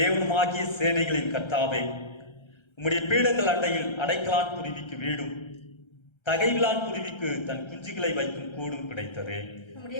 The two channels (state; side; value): late; right; 1.3 ms